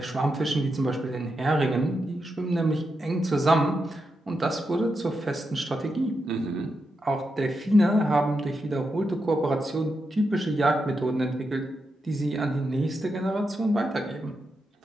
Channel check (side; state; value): both; normal; correlation 0.86